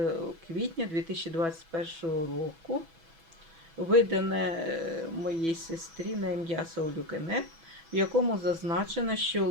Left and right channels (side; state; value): left; late; 6.1 ms